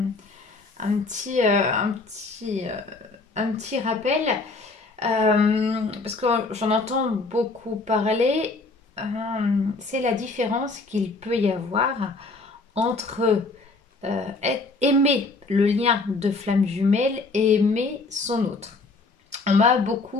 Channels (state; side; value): quieter; right; 3.6 dB